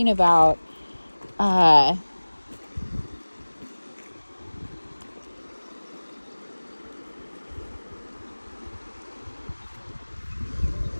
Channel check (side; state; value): both; inverted; correlation -1.00